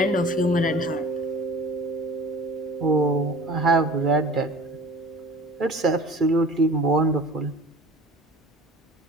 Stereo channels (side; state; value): both; normal; correlation 0.42